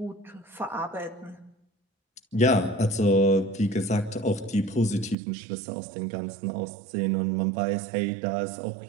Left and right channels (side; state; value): left; drops out; at 5.2 s